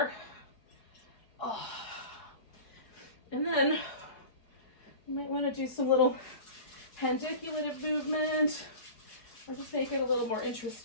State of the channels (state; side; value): late; right; 4.8 ms